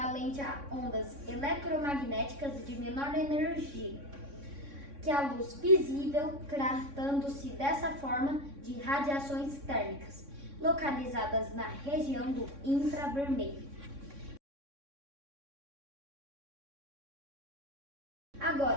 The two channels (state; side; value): late; left; 3.6 ms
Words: a ondas eletromagnéticas de menor energia que a luz visível, tratando-se dessa forma de radiações térmicas, localizadas na região do infravermelho.